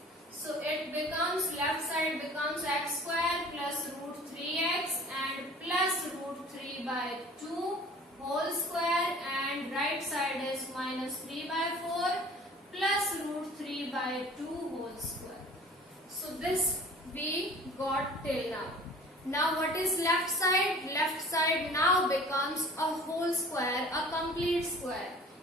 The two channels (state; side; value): normal; both; correlation 0.47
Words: So it becomes, left side becomes x square plus √3x and plus √3/2 whole square, and right side is -3/4 plus √3/2 whole square. So this we got till now. Now what is left side? Left side now becomes a whole square, a complete square.